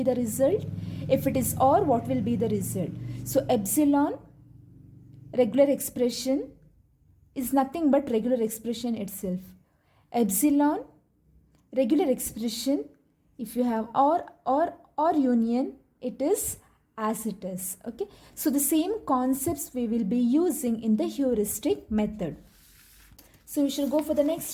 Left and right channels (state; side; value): identical; both; correlation 1.00